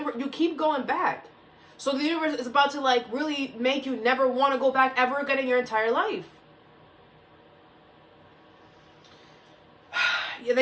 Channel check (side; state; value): both; identical; correlation 1.00